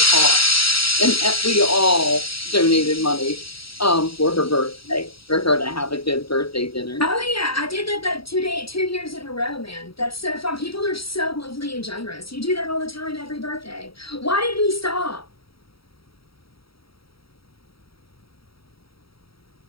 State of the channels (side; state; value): right; late; 0.75 ms